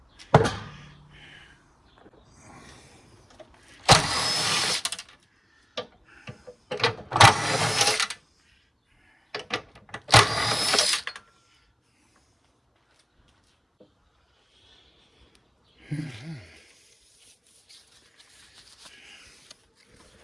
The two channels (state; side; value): identical; both; correlation 1.00